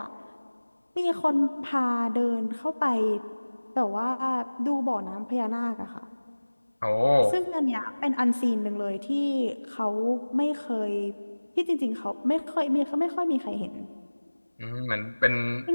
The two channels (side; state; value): both; inverted; correlation -1.00